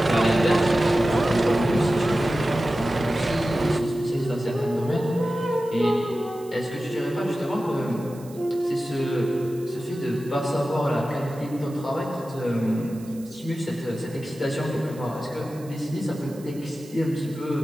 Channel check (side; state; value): right; noise; hiss, 23 dB below the sound